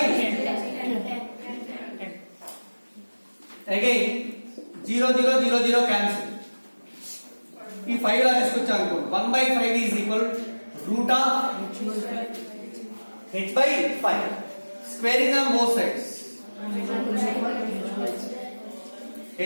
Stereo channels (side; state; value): both; inverted; correlation -1.00